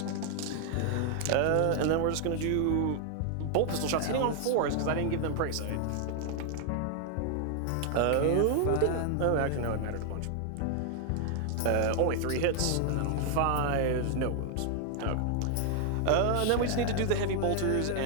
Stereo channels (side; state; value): both; different; correlation 0.00